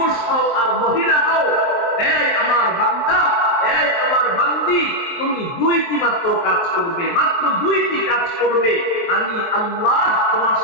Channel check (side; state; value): right; late; 23 ms